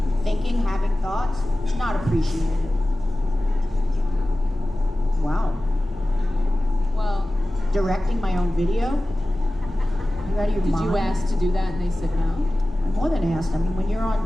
Thinking, having thoughts, not appreciated. Wow. Well, Directing my own video? You out of your did mind? you ask to do that and they said no? I'm more than asked. I mean, when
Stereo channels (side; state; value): both; normal; correlation 0.96